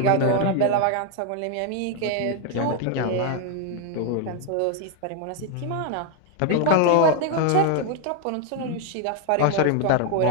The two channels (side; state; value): both; different; correlation 0.01